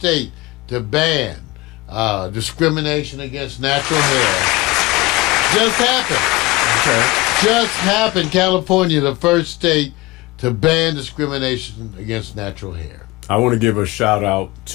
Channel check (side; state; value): right; quieter; 21.1 dB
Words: to ban discrimination against natural hair. Just happened. Okay. Just happened. California, the first state to ban discrimination against natural hair. I want to give a shout out